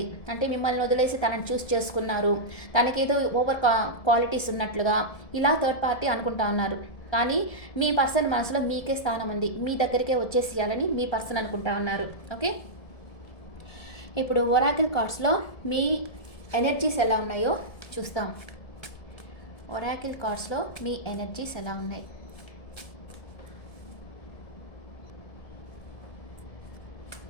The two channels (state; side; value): late; right; 1.7 ms